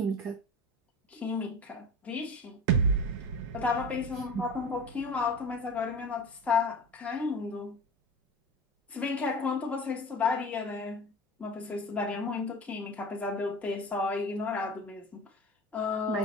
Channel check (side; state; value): both; normal; correlation 0.33